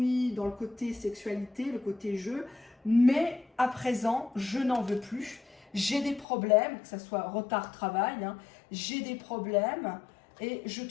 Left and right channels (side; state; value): right; drops out; at 6.2 s